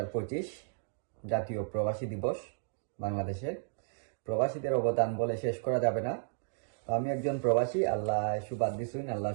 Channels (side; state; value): left; silent; digital silence